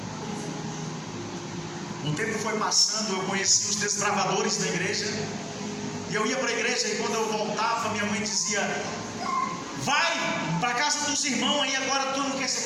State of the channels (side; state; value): both; identical; correlation 1.00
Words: O tempo foi passando, eu conheci os desbravadores da igreja. E eu ia para a igreja e quando eu voltava, minha mãe dizia: vai para a casa dos irmãos aí agora, tu não quer